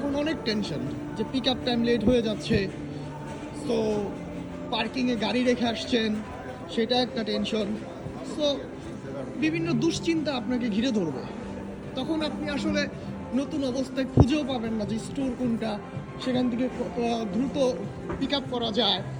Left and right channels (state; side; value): identical; both; correlation 1.00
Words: অনেক টেনশন যে পিক আপ টাইম লেট হয়ে যাচ্ছে, সো পার্কিংয়ে গাড়ি রেখে আসছেন, সেটা একটা টেনশন। সো বিভিন্ন দুশ্চিন্তা আপনাকে ঘিরে ধরবে। তখন আপনি আসলে নতুন অবস্থায় খুঁজেও পাবেন না যে স্টোর কোনটা, সেখান থেকে দ্রুত পিক আপ করা যায়।